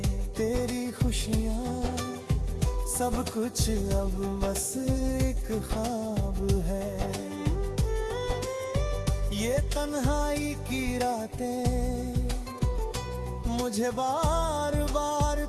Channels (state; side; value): identical; both; correlation 1.00